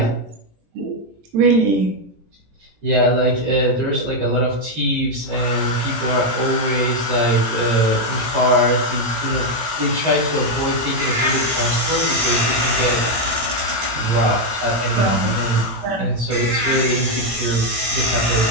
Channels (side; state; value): left; late; 18 ms